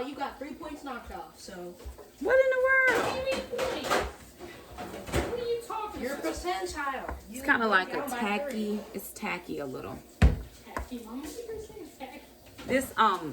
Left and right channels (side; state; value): both; identical; correlation 1.00